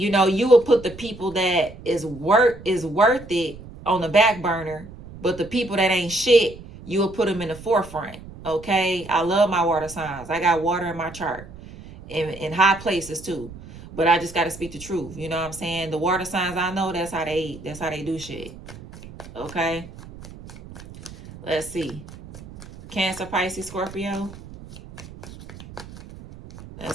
will put the people that is worth it on the back burner, but the people that ain't shit, you will put them in the forefront. Okay, I love my water signs. I got water in my chart in high places too, but I just got to speak the truth. You know what I'm saying? The water signs I know, that's how they do shit. Okay, let's see. Cancer, Pisces, Scorpio.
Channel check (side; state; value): right; noise; rumble, 16 dB below the sound